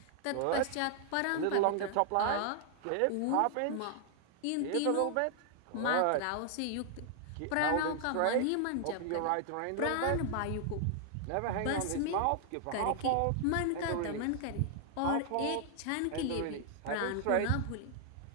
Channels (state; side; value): different; both; correlation 0.00